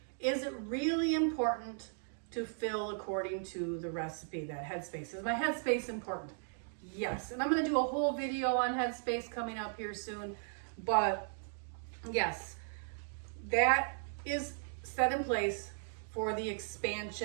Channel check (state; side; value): silent; left; digital silence